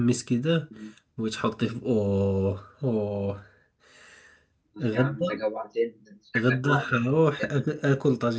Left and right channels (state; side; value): identical; both; correlation 1.00